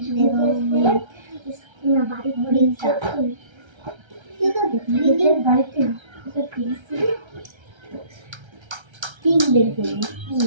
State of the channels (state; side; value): late; left; 1.3 ms